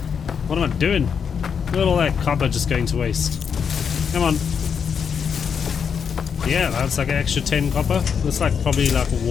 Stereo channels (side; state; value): right; quieter; 6.8 dB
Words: What am I doing? Look at all that copper just going to waste. Come on. Yeah, that's like an extra 10 copper. That's like probably like